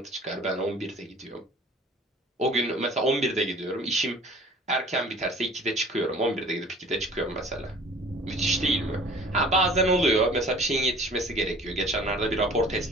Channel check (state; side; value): normal; both; correlation 0.48